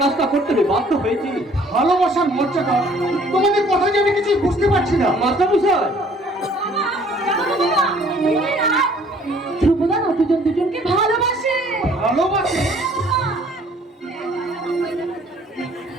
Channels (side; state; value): both; normal; correlation 0.57